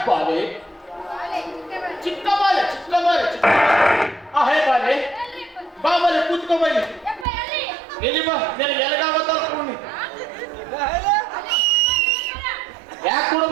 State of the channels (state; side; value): drops out; left; at 7.2 s